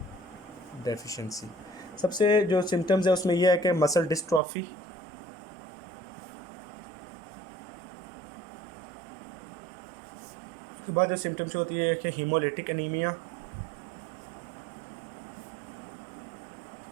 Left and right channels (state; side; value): drops out; left; at 4.4 s